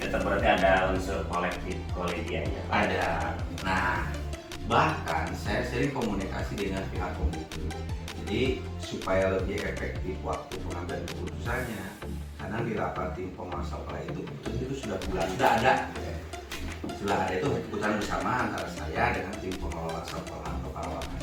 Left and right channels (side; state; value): both; identical; correlation 1.00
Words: berarti ada unsur kolektif kolegialnya. Ada. Nah, bahkan saya sering komunikasi dengan pihak komite. Jadi supaya lebih efektif waktu pengambilan keputusannya, karena di rapat tim pengawas sekolah itu sudah ada itu keputusan bersama antara saya dengan tim pengelola sekolah atau pengelola.